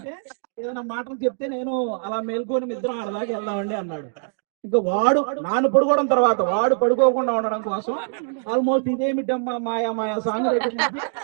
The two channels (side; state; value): left; silent; digital silence